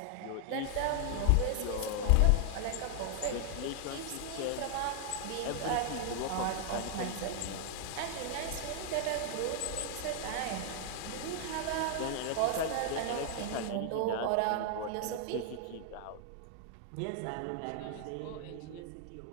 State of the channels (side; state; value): both; different; correlation 0.00